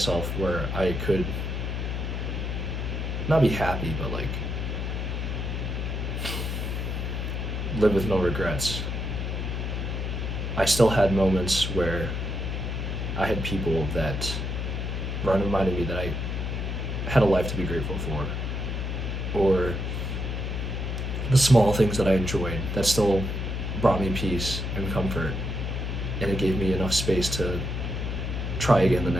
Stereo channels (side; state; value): left; noise; hum, 2 dB below the sound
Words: where I could not be happy, but like live with no regrets, I still had moments where I had people that reminded me that I had a life to be grateful for, or the small things that I enjoyed that still brought me peace and comfort, and it gave me enough space to try again the